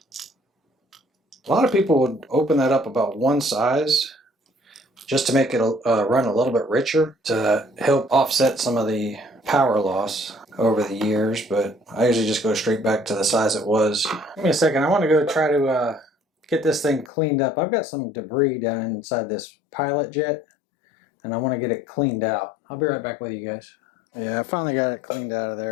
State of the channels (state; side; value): drops out; right; at 17.1 s